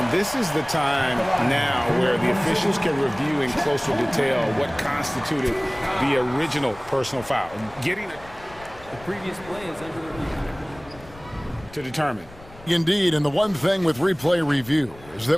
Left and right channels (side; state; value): left; noise; rumble, 21 dB below the sound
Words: this is the time now where the officials can review in closer detail what constituted the original personal foul. The previous play is under the review. to determine. Indeed, and the one thing with replay review is